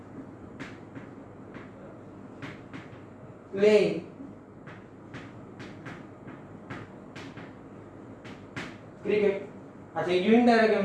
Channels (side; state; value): both; identical; correlation 1.00